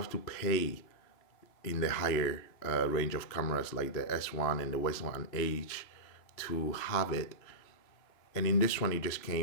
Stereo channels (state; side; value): late; right; 3.0 ms